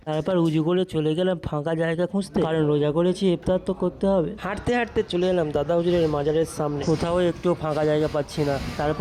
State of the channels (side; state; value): both; identical; correlation 1.00